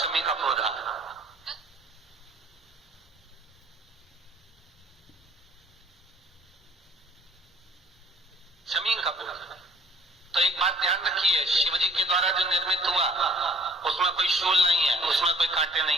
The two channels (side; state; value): both; normal; correlation 0.53